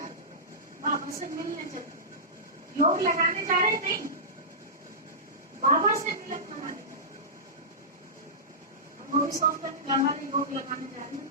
बाबा से मिलने चलते, योग लगाने जा रहे नहीं, बाबा से मिलन लगाने जा रहे। वो भी सोचते हैं घर वाले योग लगाने जा रहे हैं,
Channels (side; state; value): both; normal; correlation -0.17